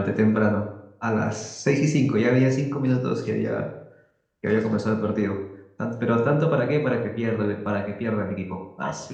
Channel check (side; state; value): both; identical; correlation 1.00